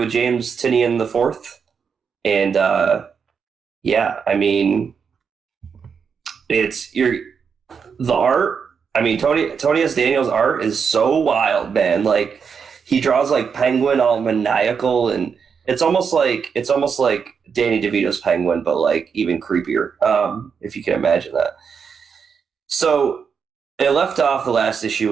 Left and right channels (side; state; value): left; quieter; 6.3 dB